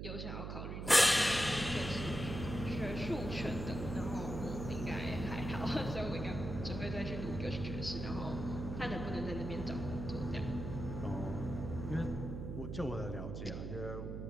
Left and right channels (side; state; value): right; noise; hum, 5 dB below the sound